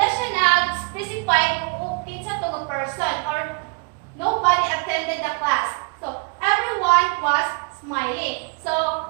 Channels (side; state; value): left; quieter; 35.3 dB